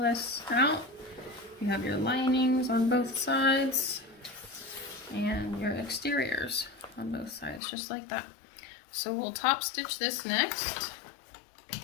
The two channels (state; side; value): drops out; right; at 7.6 s